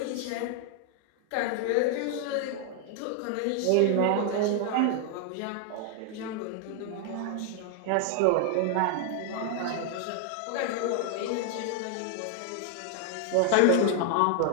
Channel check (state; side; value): different; both; correlation 0.00